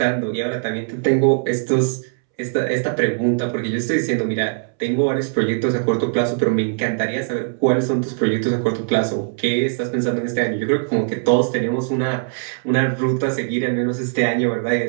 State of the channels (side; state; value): left; silent; 65 dB below the other